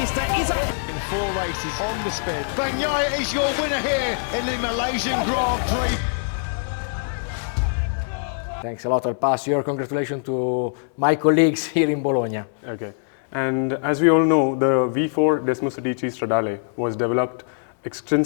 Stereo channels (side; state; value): right; silent; 62 dB below the other